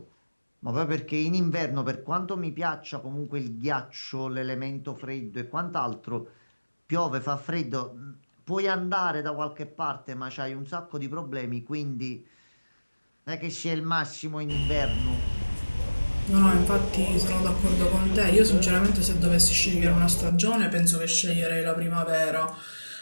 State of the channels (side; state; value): both; inverted; correlation -1.00